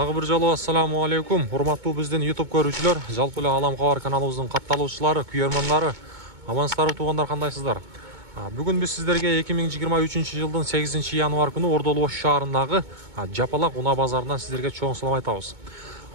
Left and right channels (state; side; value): late; left; 2.2 ms